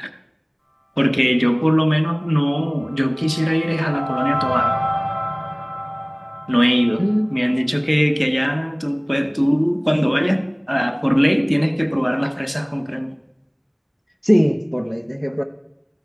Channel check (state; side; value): identical; both; correlation 1.00